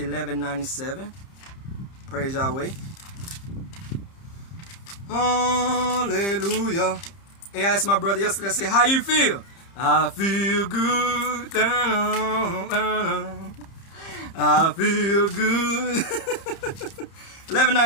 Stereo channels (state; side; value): late; right; 30 ms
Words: Praise Yahweh. Hallelujah. Hey, I asked my brother yesterday, I said, how you feel? I feel good. I feel good.